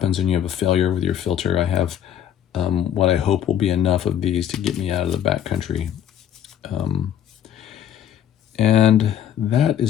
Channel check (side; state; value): right; quieter; 10.0 dB